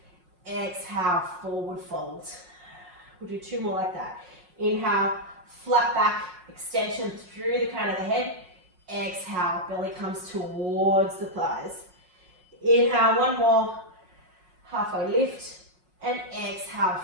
Exhale, forward fold. We'll do two more like that. Inhale, flat back, extension through the crown of the head. Exhale, belly comes towards the thighs. Inhale, one more, halfway lift, and exhale,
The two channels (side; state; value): left; late; 5.5 ms